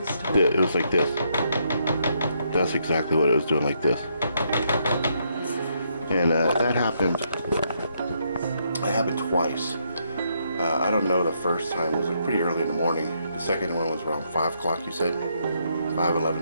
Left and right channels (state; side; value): inverted; both; correlation -0.75